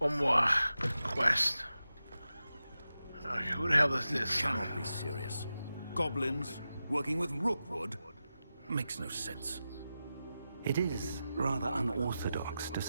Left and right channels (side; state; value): both; inverted; correlation -0.92